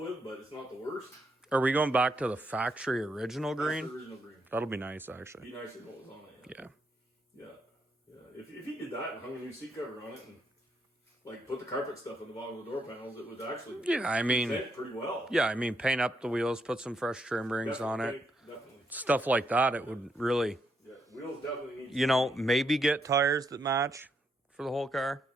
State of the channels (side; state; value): both; normal; correlation 0.77